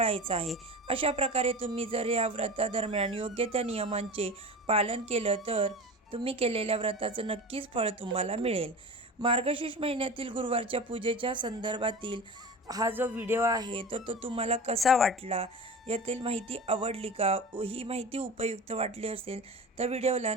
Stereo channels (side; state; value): both; normal; correlation 0.32